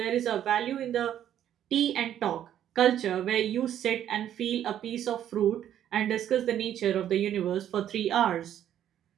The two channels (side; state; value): left; quieter; 10.7 dB